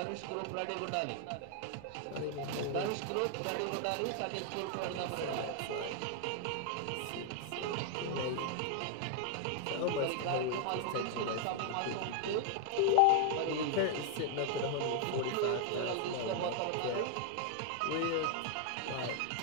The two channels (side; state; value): both; different; correlation 0.00